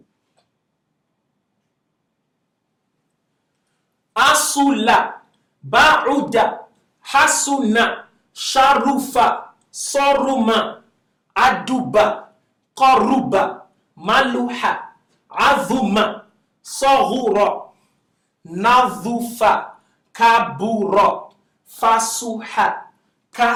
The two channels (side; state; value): both; identical; correlation 1.00